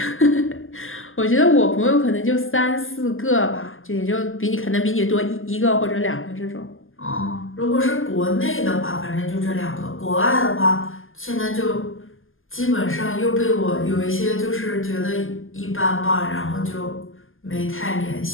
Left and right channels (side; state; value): right; late; 0.59 ms